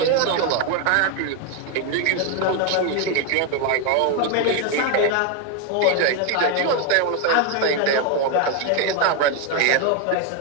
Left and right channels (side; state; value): both; different; correlation 0.01